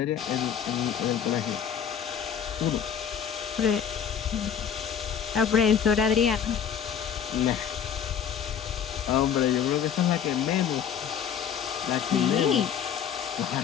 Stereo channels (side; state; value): right; quieter; 8.2 dB